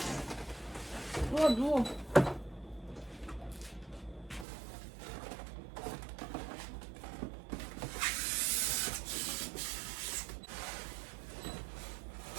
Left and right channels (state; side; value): drops out; left; at 4.5 s